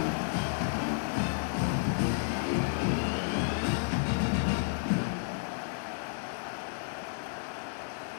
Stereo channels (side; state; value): right; silent; digital silence